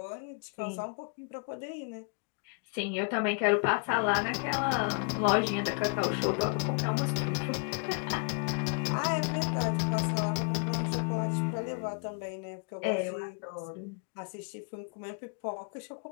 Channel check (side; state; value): right; quieter; 38.6 dB